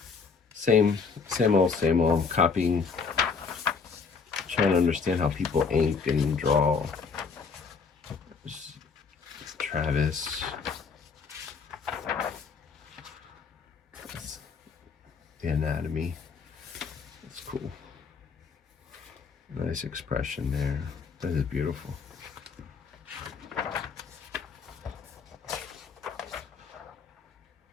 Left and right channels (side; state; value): right; quieter; 5.3 dB